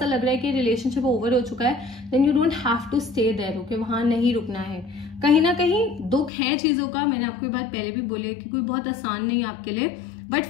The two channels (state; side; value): drops out; right; at 6.3 s